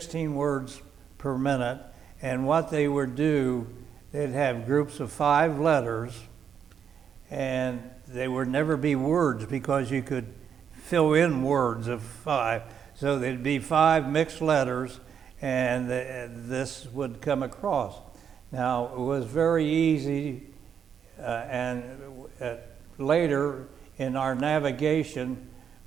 words per minute. And what they would do, they'd have groups of 5 letters, and they would never be words because you could fill in words of 5. So there'd be 5 mixed letters, and this would come across. Now, it was very easy, and later in our navigation,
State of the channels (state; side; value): quieter; left; 7.8 dB